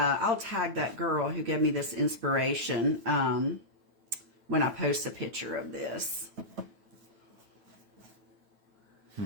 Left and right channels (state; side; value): late; left; 9.1 ms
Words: tag that girl who gave me this inspiration when I post a picture of this.